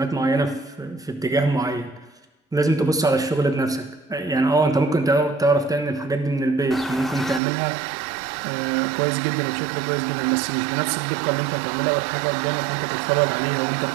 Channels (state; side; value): drops out; left; at 7.4 s